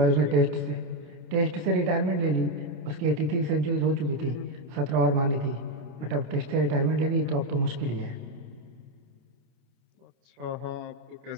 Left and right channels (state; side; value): late; left; 28 ms